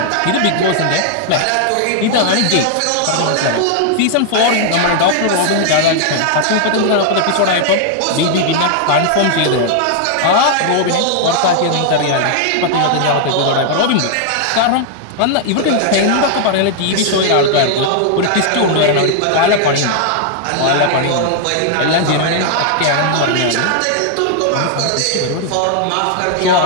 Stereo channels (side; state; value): both; different; correlation 0.00